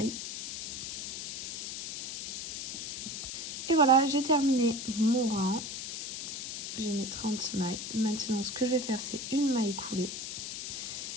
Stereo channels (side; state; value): left; noise; hiss, 5 dB below the sound